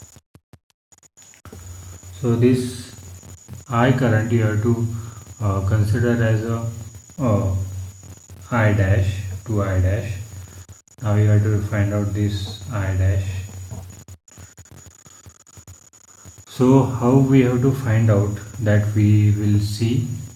So this I current you have to consider as a I dash to I dash. Now you have to find out this I dash. So how we have to find out that? We will see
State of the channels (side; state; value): both; identical; correlation 1.00